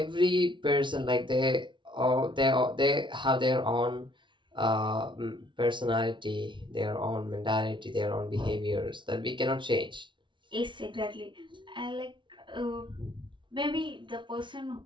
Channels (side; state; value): left; late; 0.24 ms